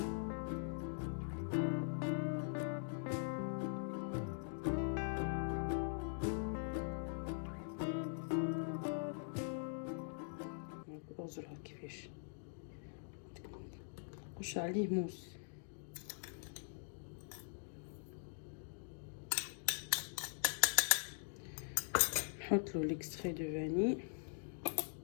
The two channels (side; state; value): right; silent; digital silence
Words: اوزرها كيفاش نخش عليه موس. نحط له ليكستري دو فاني.